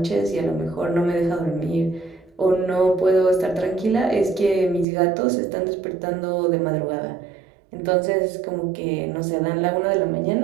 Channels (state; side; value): drops out; left; at 4.9 s